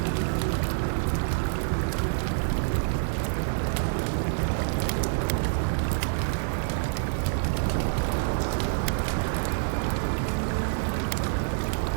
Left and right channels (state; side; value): silent; left; 60 dB below the other